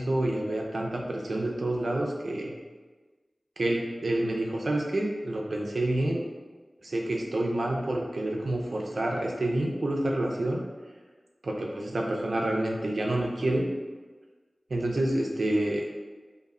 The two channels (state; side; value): normal; both; correlation 0.96